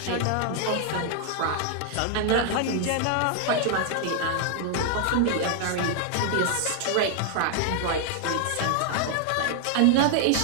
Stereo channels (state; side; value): different; both; correlation 0.00